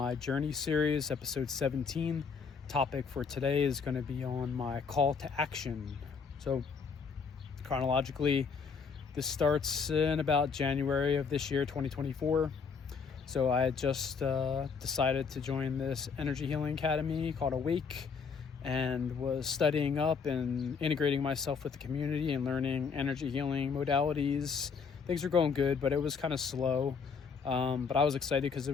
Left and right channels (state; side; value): quieter; right; 5.7 dB